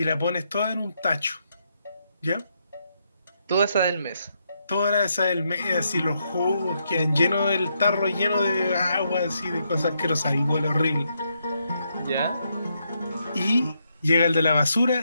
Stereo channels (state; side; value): inverted; both; correlation -0.79